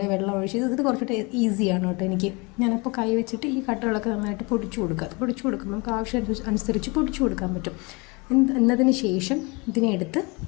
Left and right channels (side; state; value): right; quieter; 27.9 dB